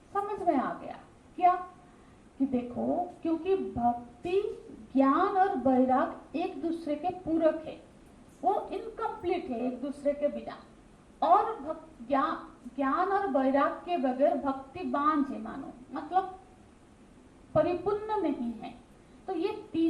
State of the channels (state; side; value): identical; both; correlation 1.00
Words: समझ में आ गया। क्या? कि देखो, क्योंकि भक्ति, ज्ञान और वैराग एक दूसरे के पूरक है, वो इनकम्प्लीट है एक दूसरे के बिना। और ज्ञान और वैराग के बगैर भक्ति बांझ है, मानो मतलब परिपूर्ण नहीं है। तो ये